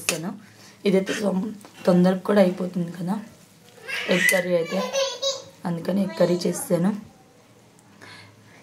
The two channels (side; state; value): both; identical; correlation 1.00